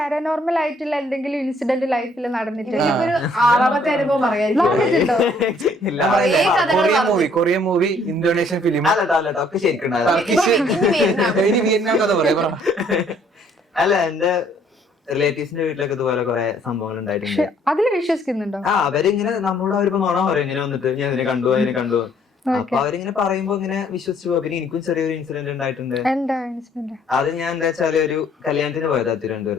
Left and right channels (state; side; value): normal; both; correlation 0.63